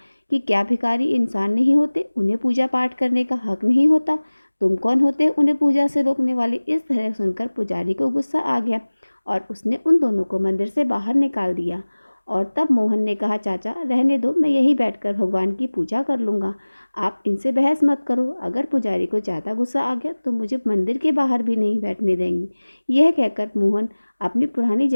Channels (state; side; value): inverted; both; correlation -1.00